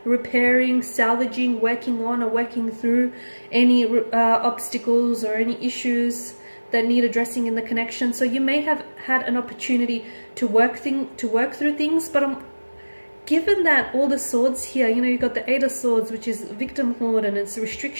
repairing, salvaging, working on or working through any obstacles or any issues that need addressing in the connection. So you may have had an opportunity to work through things, but given that all the swords here, you know, you've got the Eight of Swords, which is victimhood and it's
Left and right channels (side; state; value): both; inverted; correlation -1.00